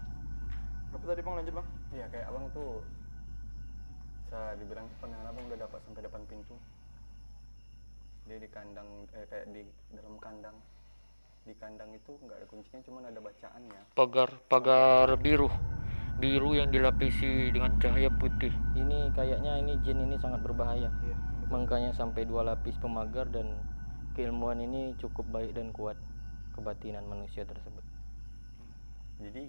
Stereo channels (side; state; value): both; inverted; correlation -1.00